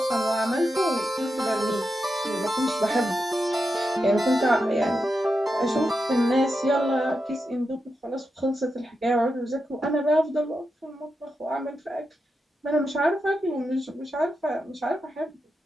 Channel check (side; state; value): both; normal; correlation 0.87